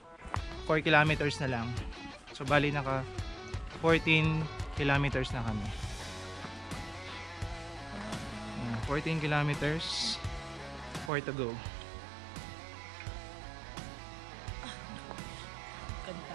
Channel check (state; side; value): drops out; left; at 11.1 s